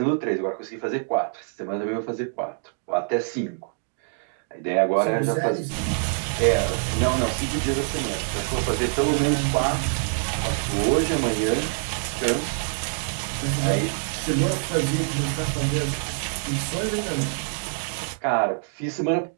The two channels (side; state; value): left; silent; digital silence